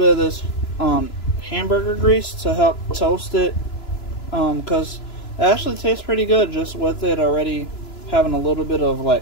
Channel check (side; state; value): right; late; 2.9 ms